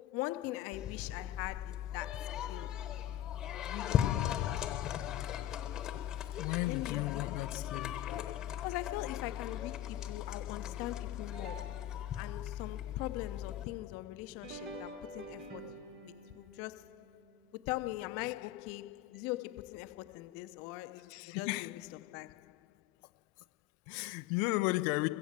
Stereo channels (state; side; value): quieter; right; 12.8 dB